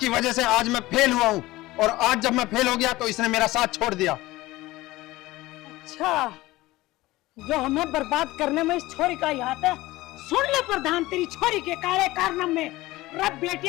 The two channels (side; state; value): right; quieter; 18.5 dB